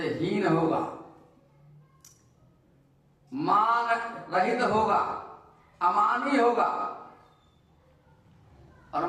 हीन होगा, मान रहित होगा, अमानी होगा और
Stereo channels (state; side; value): identical; both; correlation 1.00